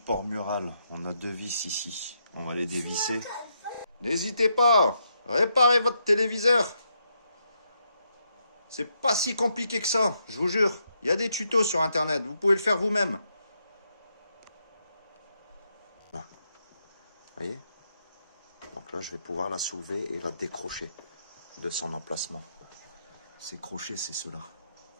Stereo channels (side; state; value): both; inverted; correlation -0.79